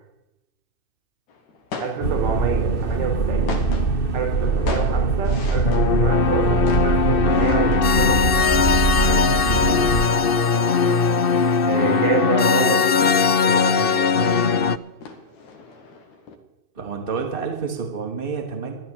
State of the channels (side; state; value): right; late; 2.6 ms